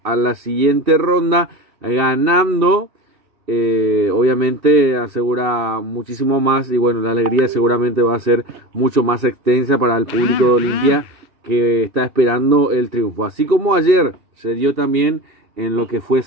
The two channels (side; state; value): left; late; 2.6 ms